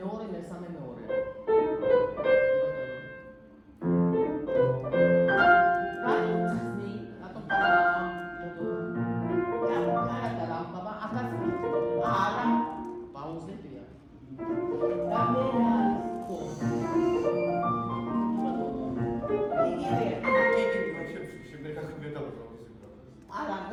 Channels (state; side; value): identical; both; correlation 1.00